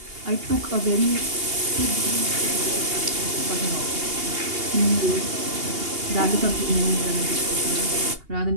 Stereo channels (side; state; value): left; late; 2.8 ms